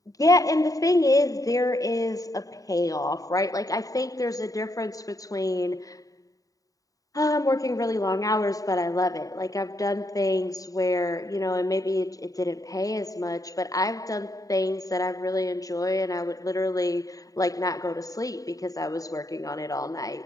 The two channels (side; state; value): right; late; 0.17 ms